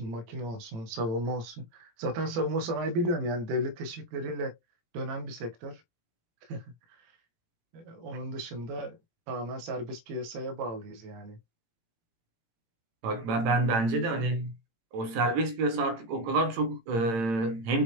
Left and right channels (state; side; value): late; left; 18 ms